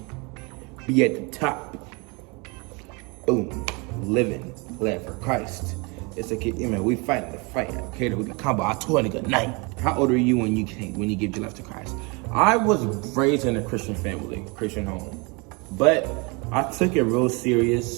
Be at the top. Boom. Living. Glad for Christ. It's a kid, we fighting the fight. Okay, we can combo. I told a nigga night. How old are you when you give your life to Christ? I was raised in a Christian family, Christian home. But I took it real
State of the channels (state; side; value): quieter; left; 29.5 dB